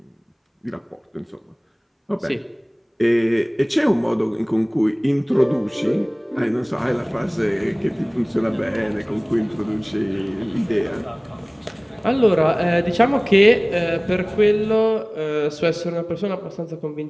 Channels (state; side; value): identical; both; correlation 1.00